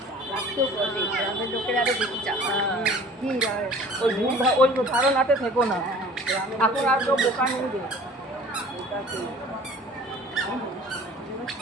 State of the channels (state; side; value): normal; both; correlation 0.46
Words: ওই ধারণাতে থেকো না, এখন আর কেউ বোকা নেই।